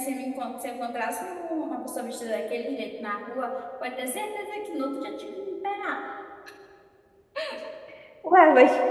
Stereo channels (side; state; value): both; identical; correlation 1.00